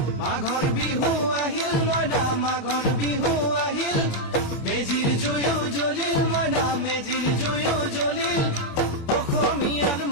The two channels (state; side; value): late; right; 24 ms